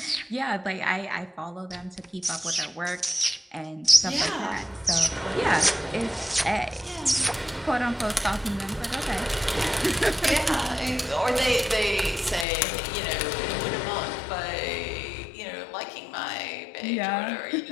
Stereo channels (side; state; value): right; drops out; at 12.5 s